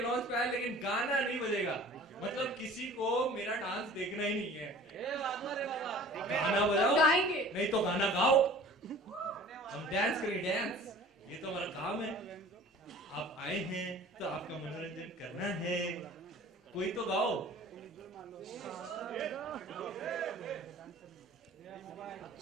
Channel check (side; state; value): both; normal; correlation 0.46